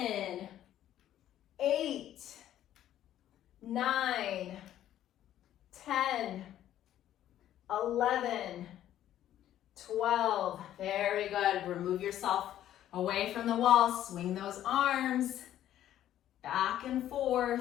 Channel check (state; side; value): quieter; right; 12.0 dB